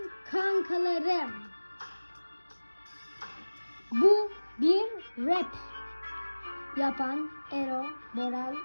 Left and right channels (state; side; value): inverted; both; correlation -1.00